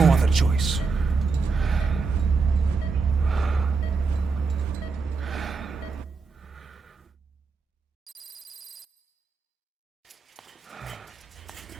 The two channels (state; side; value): quieter; left; 4.6 dB